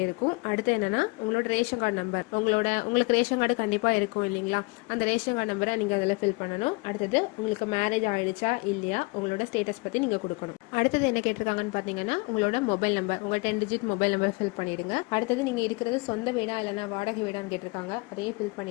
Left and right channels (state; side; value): quieter; right; 27.8 dB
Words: இருக்கும். அடுத்து என்னன்னா, உங்களோட ரேஷன் கார்டு நம்பர், உங்களுக்கு ரேஷன் கார்டு கண்டிப்பா இருக்கும் இல்லைங்களா, அந்த ரேஷன் கார்டு நம்பரை நீங்க அதில் ஃபில் பண்ணணும். அடுத்தது உங்களுக்கு மேரேஜ் ஆயிடுச்சா இல்லையா, உங்களோட ஸ்டேட்டஸ் பத்தி நீங்க கொடுக்கணும். அடுத்தது என்ன கேட்டிருக்காங்கன்னு பாத்தீங்கன்னா, உங்களோட மொபைல் நம்பர், உங்க 10 டிஜிட் மொபைல் நம்பர் ஃபில் பண்ணிடுங்க. அடுத்தது நீங்க இருக்கிறது சொந்த வீடா இல்லைன்னா வாடகை வீடான்னு கேட்டிருக்காங்க, அதையே ஃபில்